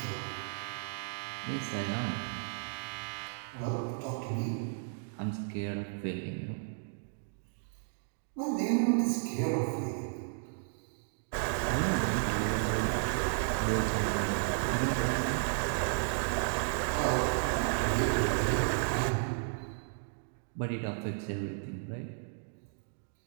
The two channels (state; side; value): silent; left; digital silence